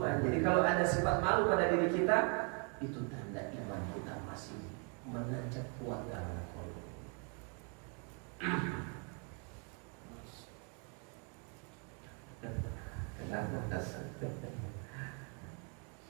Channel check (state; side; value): quieter; left; 37.9 dB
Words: Jadi kalau ada sifat malu pada diri kita, itu tanda iman kita masih menancap kuat dalam kolom. Kenapa dasar?